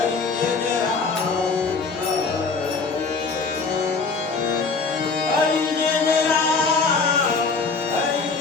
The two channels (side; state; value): right; quieter; 4.5 dB